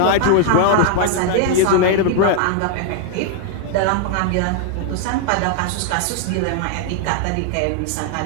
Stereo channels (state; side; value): different; both; correlation 0.00